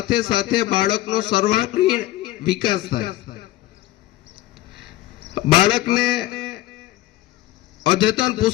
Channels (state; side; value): quieter; right; 15.7 dB